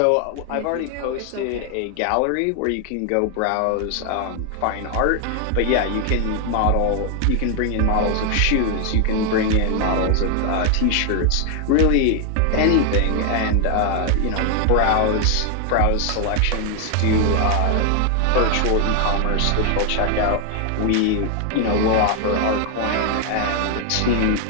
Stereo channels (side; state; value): both; different; correlation 0.00